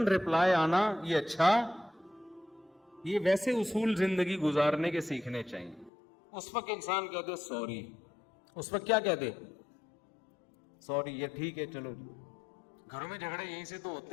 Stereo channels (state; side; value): drops out; right; at 5.9 s